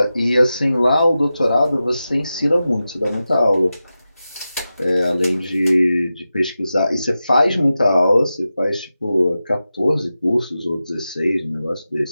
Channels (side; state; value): both; inverted; correlation -0.93